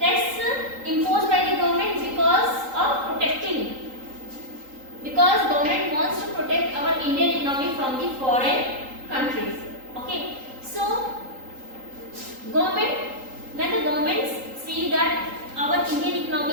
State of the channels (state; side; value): late; left; 3.8 ms